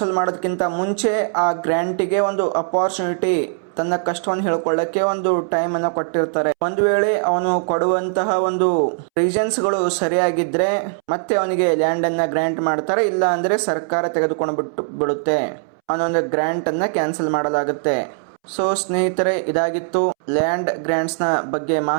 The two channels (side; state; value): left; silent; 66 dB below the other